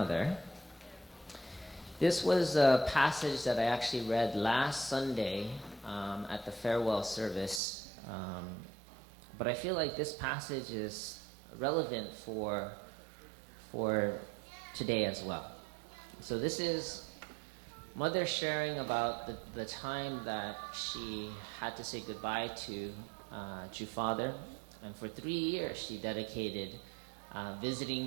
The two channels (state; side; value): drops out; left; at 7.6 s